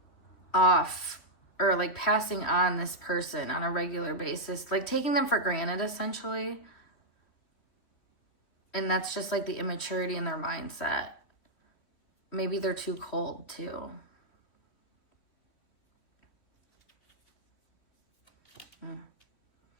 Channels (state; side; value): late; right; 3.1 ms